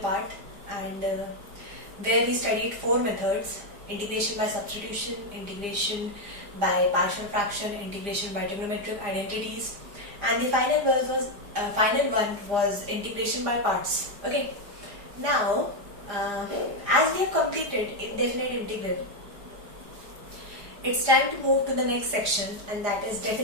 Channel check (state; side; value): late; left; 4.9 ms